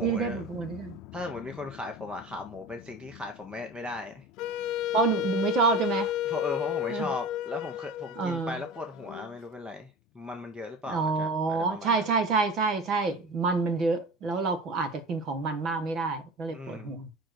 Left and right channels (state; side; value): normal; both; correlation 0.34